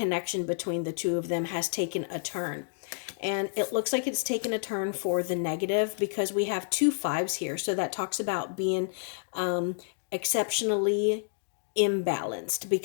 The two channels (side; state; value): right; silent; digital silence